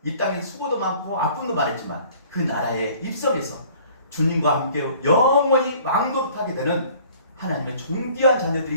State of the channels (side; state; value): both; inverted; correlation -0.53